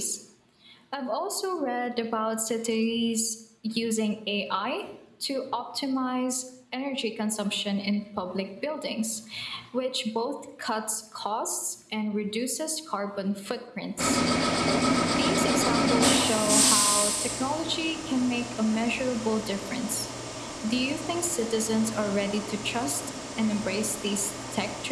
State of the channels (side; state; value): both; identical; correlation 1.00